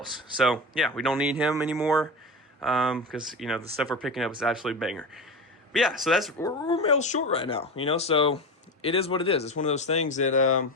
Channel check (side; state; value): both; normal; correlation 0.23